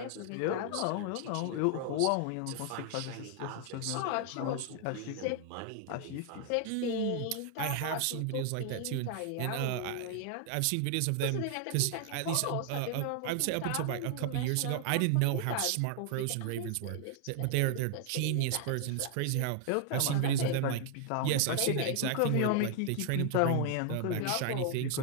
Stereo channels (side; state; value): both; different; correlation 0.00